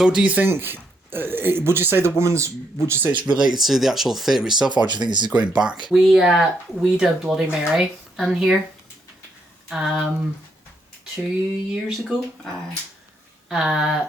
do you think? Would you say it's related to the actual theatre itself, or do you think this is going back? We did Bloody Mary in here 2 years ago.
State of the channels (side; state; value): both; normal; correlation 0.76